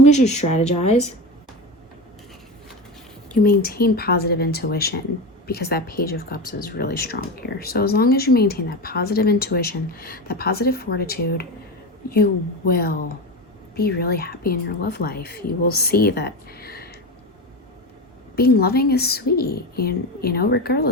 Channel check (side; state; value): both; normal; correlation 0.22